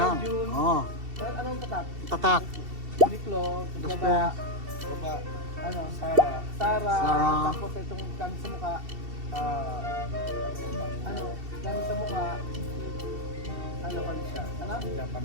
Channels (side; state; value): left; late; 2.7 ms